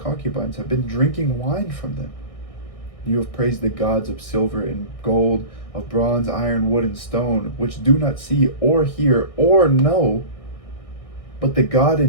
have been drinking wine from them. You have praised the gods of silver and gold, of bronze, iron, wood, and stone, which do not see or hear or know, but the God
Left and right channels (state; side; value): late; right; 1.6 ms